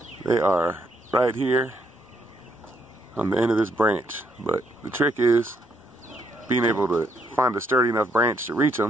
They are right here on the end of this branch. But the trick is being able to find a sturdy enough branch to reach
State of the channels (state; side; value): normal; both; correlation 0.74